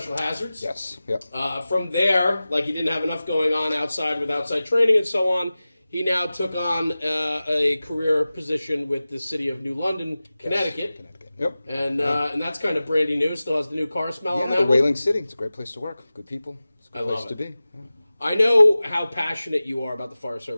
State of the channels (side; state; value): both; inverted; correlation -0.96